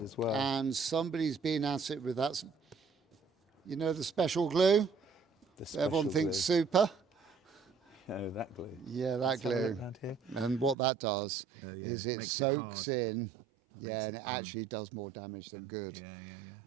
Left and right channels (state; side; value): drops out; left; at 10.8 s